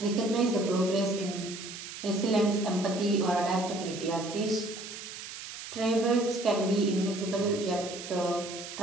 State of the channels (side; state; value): right; noise; hiss, 10 dB below the sound